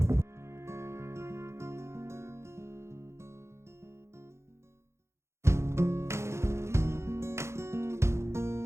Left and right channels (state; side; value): late; left; 0.13 ms